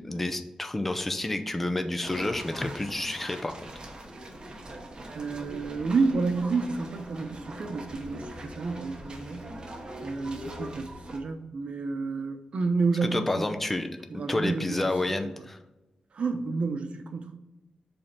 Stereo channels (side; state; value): both; normal; correlation 0.90